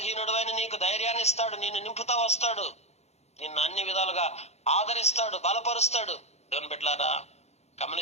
నీకు ధైర్యాన్ని ఇస్తాడు, నిన్ను నింపుతా వస్తాడు, నిన్ను అన్ని విధాలుగా ఆదరిస్తాడు, బలపరుస్తాడు. దేవుని బిడ్డలారా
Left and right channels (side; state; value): right; late; 0.31 ms